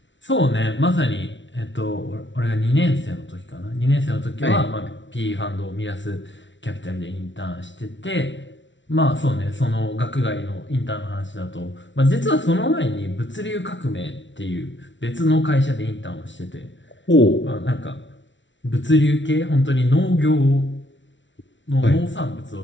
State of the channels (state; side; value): late; right; 0.55 ms